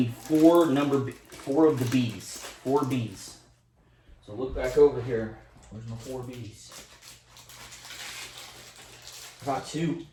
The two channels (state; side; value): identical; both; correlation 1.00